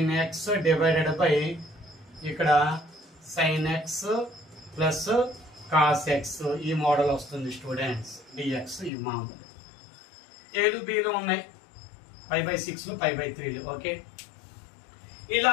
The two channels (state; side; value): drops out; right; at 8.9 s